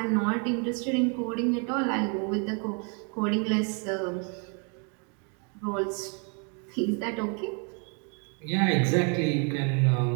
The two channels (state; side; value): quieter; left; 38.2 dB